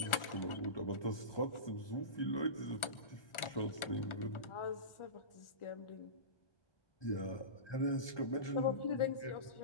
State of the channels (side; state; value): right; late; 1.4 ms